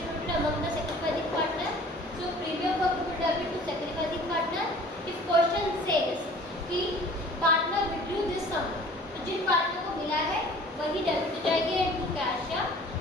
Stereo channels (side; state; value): both; normal; correlation 0.48